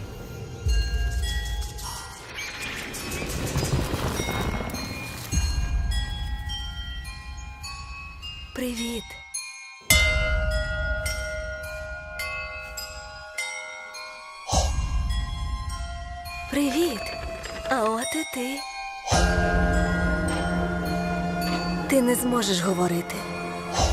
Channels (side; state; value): both; identical; correlation 1.00